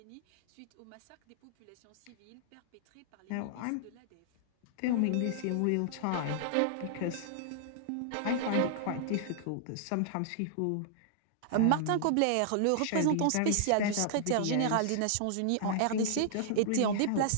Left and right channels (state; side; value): different; both; correlation -0.01